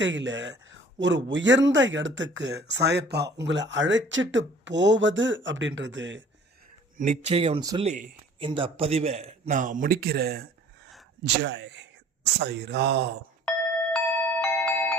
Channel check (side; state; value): both; normal; correlation 0.50